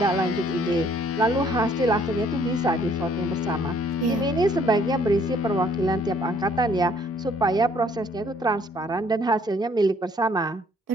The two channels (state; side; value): normal; both; correlation 0.62